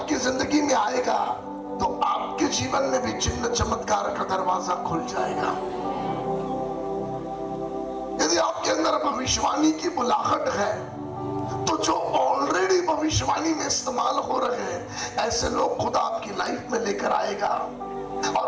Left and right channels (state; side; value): identical; both; correlation 1.00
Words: जिंदगी में आएगा तो आपके जीवन में भी चिन्ह चमत्कार का दरवाजा खुल जाएगा। यदि आपके अंदर भविष्यवाणी की बुलाहट है तो जो ऑलरेडी भविष्यवाणी में इस्तेमाल हो रहे हैं, ऐसे लोग खुदा आपकी लाइफ में लेकर आएगा